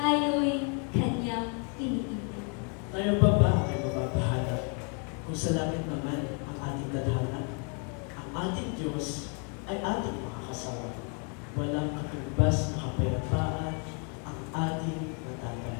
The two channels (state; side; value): quieter; right; 36.0 dB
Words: kanyang iniibig. Tayo pa ba ay mapapahanap kung sa langit naman ang ating dadhanan? Ang ating Diyos ay ating makakasama. Walang katumbas na kapayapaan ang ating